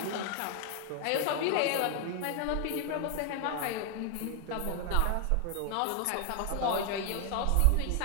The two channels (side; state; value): both; different; correlation 0.00